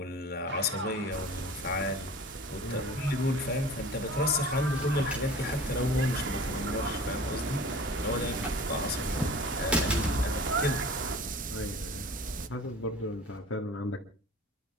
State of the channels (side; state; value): both; normal; correlation 0.42